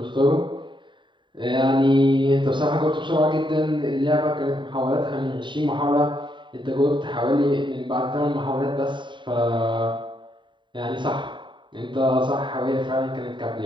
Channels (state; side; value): late; left; 0.23 ms